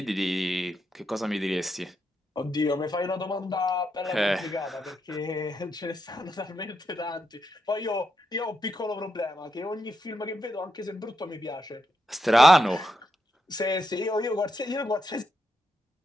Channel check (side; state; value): both; normal; correlation 0.83